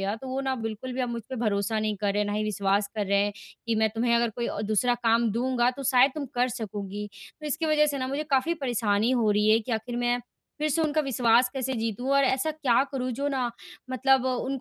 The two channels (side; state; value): both; identical; correlation 1.00